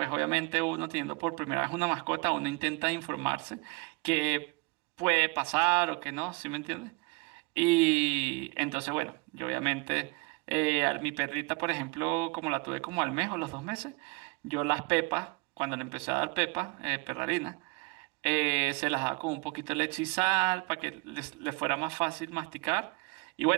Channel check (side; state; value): left; quieter; 27.4 dB